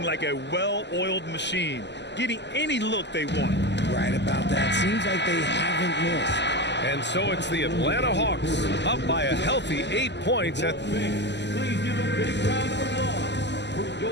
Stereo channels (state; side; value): late; right; 0.51 ms